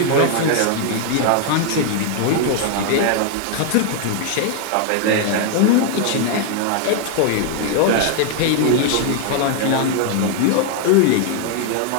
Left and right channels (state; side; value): different; both; correlation 0.00